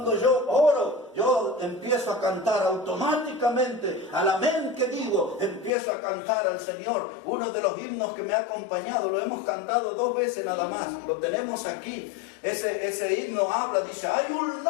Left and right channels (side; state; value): right; drops out; at 5.7 s